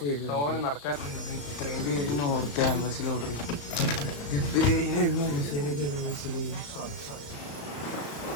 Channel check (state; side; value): late; right; 35 ms